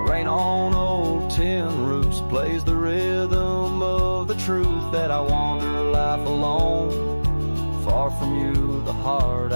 Rain on old tin roofs plays the rhythm of the truth that I wander life alone, far from you, the heart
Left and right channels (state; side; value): inverted; both; correlation -1.00